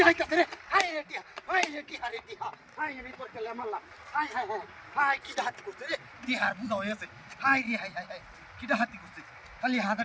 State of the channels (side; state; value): both; identical; correlation 1.00